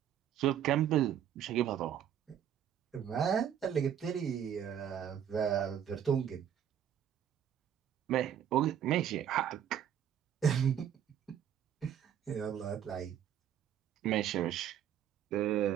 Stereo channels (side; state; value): left; quieter; 9.6 dB